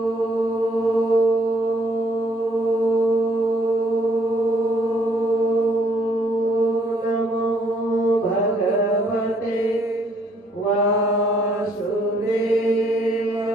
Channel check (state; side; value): normal; both; correlation 0.65